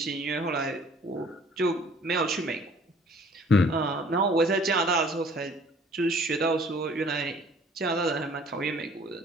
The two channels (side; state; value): both; normal; correlation 0.54